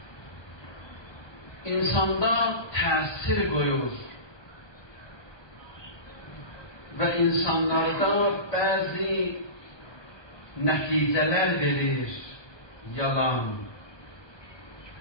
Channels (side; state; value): right; late; 1.2 ms